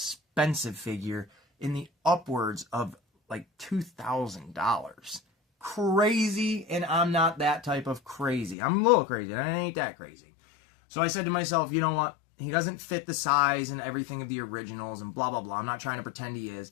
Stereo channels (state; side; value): drops out; right; at 8.6 s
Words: figure in the upwards of like $2,000. Crazy, and I'm not that type of crazy. I'm a little crazy. I ain't that crazy. So I said to myself, you know what? He doesn't fit the size and everything of the originals and blah, blah, blah. I'm not trying to pretend he is.